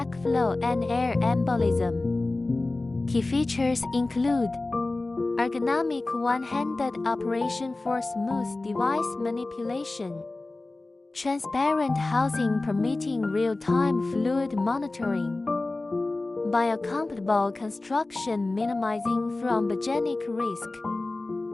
and air embolism. Key features include ergonomic one-handed operation for smooth device manipulation, transparent housing permitting real-time fluid monitoring, biocompatible construction minimizing thrombogenic risk,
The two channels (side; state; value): right; quieter; 3.1 dB